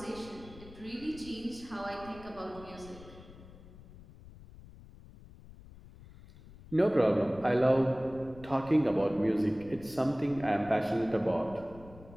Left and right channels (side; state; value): left; noise; rumble, 19 dB below the sound